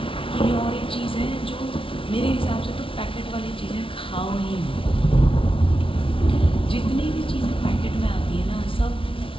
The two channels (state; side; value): late; right; 0.25 ms